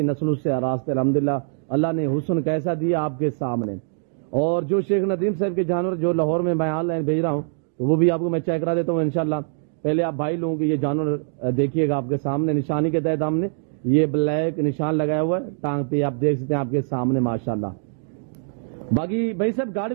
नस्लों से रास्ते अल्हम्दुलिल्लाह अल्लाह ने हुस्न कैसा दिया आपके सामने। और जो शेख नदीम साहब के जानवर जो लाहौर में मैं ऑनलाइन भेज रहा हूँ, तो वो भी आपको मैं चेक करा देता हूँ इंशाल्लाह। पहले आप भाई लोगों के ये जानवर देखिएगा आपके सामने, निशानी के तहत हमने ये ब्लैक निशान लगाया हुआ है टांग पे, आप देख सकते हैं आपके सामने माशाल्लाह। बाकी भाई साहब गाड़ी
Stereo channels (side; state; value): left; silent; digital silence